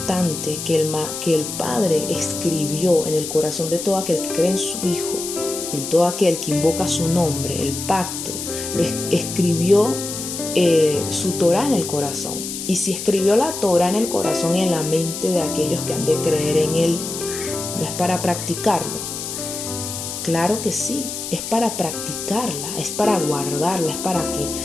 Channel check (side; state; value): left; noise; hiss, 6 dB below the sound